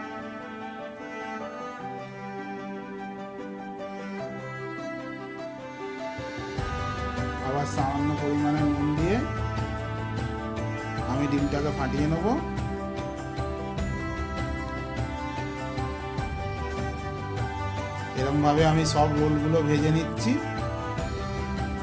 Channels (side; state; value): both; identical; correlation 1.00